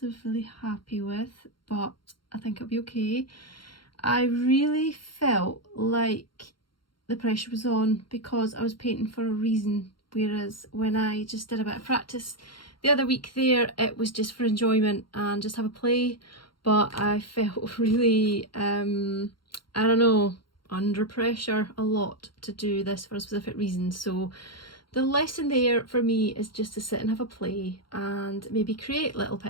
happy with, but I think it'll be okay. I really felt like the pressure was on because I was painting for a reason, whereas when I just did a bit of practice the other week there, it was just for enjoyment and just have a play. But I felt really, I don't know, under pressure a lot to do this for a specific reason. So the lesson there for me is just to sit and have a play and maybe create little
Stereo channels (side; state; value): right; late; 0.73 ms